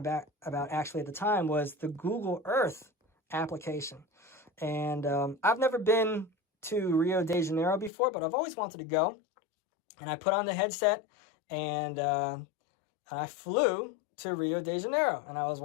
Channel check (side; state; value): right; drops out; at 7.9 s